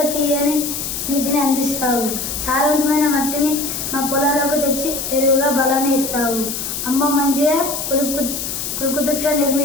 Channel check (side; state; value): left; noise; hiss, 4 dB below the sound